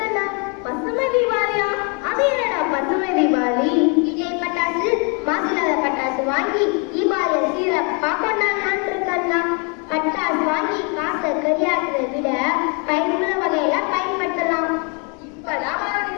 பசுமை தீபாவளியா? அது என்னடா பசுமை தீபாவளி? விஜய் பட்டாசு மாசில்லாத பட்டாசு வாங்கி தீபாவளியை சீரப்பா கொண்டாடலான்னு இருக்கேன்டா. பட்டாசு வாங்கி காசை கரியாக்குறதை விட பயனுள்ள வகையில பயன்படுத்தலாம். இப்பதான்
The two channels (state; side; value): quieter; right; 35.3 dB